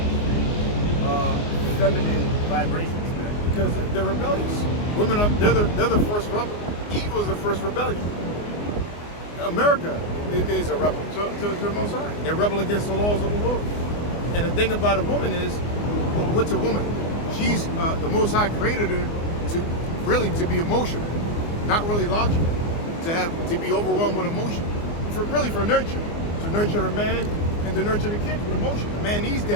feminine vibrations, man. Because they're rebellious. Women they're the first rebel. Evil is the first rebellion. America is a rebel to the Most High. They're rebel against the laws of the Lord. And the thing about a woman is, what's a woman? She's the Most High created her to be emotional, not really logical, to be overwhelmed with emotion, for nurture, to nurture her man and to nurture the kids with emotion. A man needs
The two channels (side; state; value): right; late; 24 ms